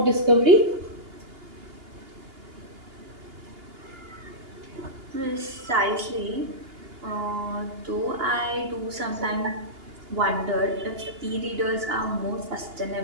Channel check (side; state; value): left; late; 2.8 ms